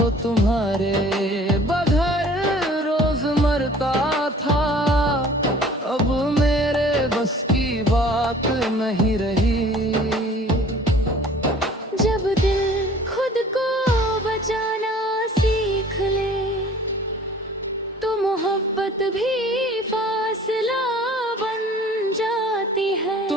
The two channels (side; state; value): both; normal; correlation 0.50